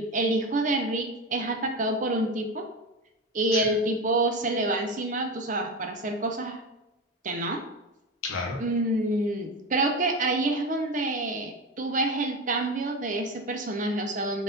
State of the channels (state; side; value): normal; both; correlation 0.21